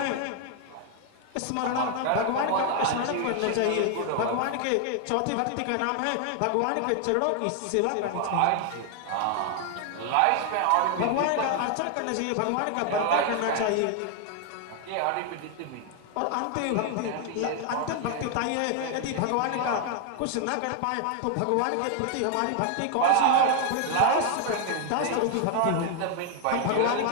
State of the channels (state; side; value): different; both; correlation 0.00